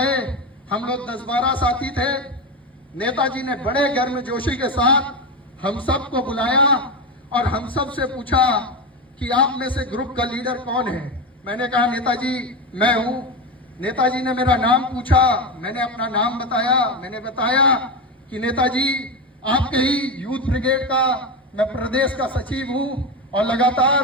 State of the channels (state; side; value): normal; both; correlation 0.17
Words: हम लोग 10-12 साथी थे। नेताजी ने बड़े गर्मजोशी के साथ हम सबको बुलाया और हम सब से पूछा कि आप में से ग्रुप का लीडर कौन है। मैंने कहा नेताजी मैं हूं। नेताजी ने मेरा नाम पूछा, मैंने अपना नाम बताया। मैंने बताया कि नेताजी आपके ही यूथ ब्रिगेड का मैं प्रदेश का सचिव हूं और